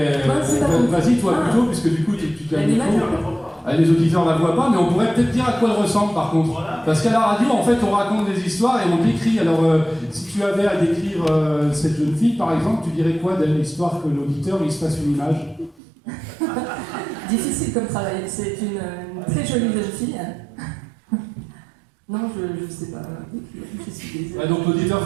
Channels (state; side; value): drops out; left; at 15.8 s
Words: vas-y toi plutôt, puisque du coup tu as le micro. Les auditeurs ne la voient pas, mais on pourrait peut-être dire à quoi elle ressemble par contre. Parce qu'à la radio, en fait, on raconte des histoires et on décrit. Alors, si tu avais à décrire cette jeune fille, par exemple, tu dirais quoi d'elle, histoire que l'auditeur il se fasse une image? Difficile comme travail, c'est une très jolie jeune fille. Non, je sais pas. Je suis désolée. Donc l'auditeur